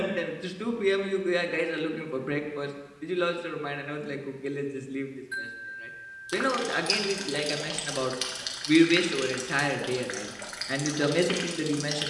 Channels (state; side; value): identical; both; correlation 1.00